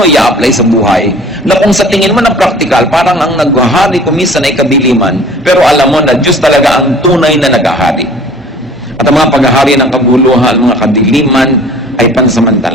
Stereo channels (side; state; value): both; normal; correlation 0.48